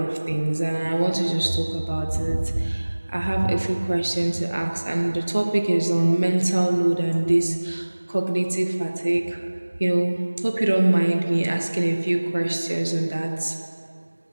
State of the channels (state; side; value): inverted; both; correlation -1.00